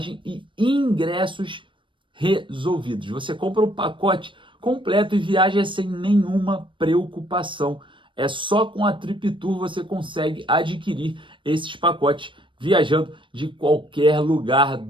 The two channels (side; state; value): left; late; 0.24 ms